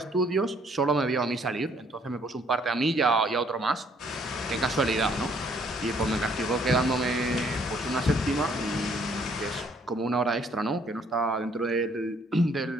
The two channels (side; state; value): both; normal; correlation 0.64